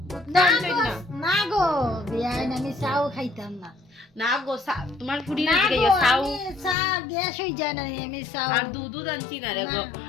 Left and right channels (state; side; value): drops out; right; at 6.8 s